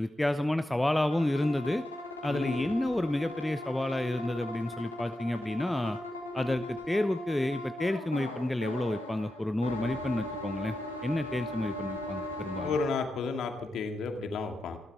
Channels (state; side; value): normal; both; correlation 0.88